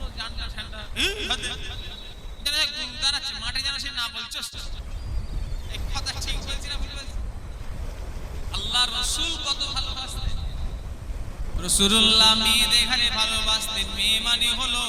জানটা ঠান্ডা। মাঠে যেন সে না বলছো, এই কথা ঠিক বলছি না, বুঝতে পারছি? আল্লাহ রাসূল কত ভালোবাসতেন, রাসূলুল্লাহ মেয়েদের ঘরে ভালোবাসতেন। মেয়ে মানে হলো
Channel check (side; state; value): both; identical; correlation 1.00